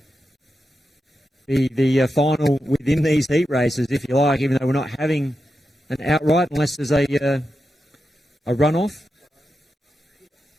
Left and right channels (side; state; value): both; normal; correlation 0.89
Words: be the final within these heat races, if you like, even though we're not having an outright unless there's a runoff.